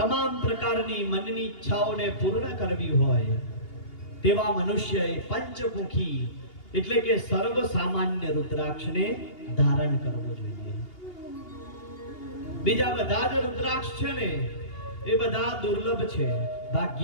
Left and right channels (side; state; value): right; late; 2.8 ms